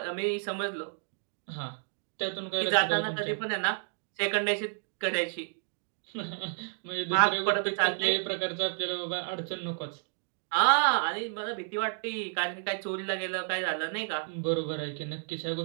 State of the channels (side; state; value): left; silent; 57 dB below the other